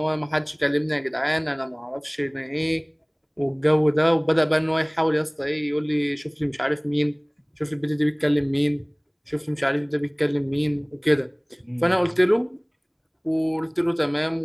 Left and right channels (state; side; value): identical; both; correlation 1.00